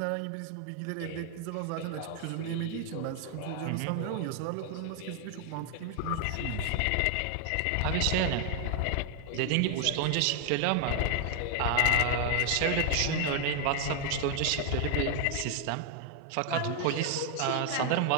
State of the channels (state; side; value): different; both; correlation 0.00